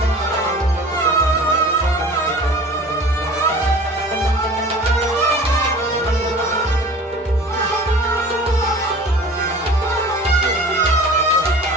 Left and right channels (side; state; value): both; normal; correlation 0.42